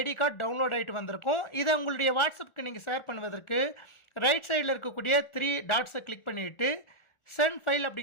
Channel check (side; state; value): right; late; 1.4 ms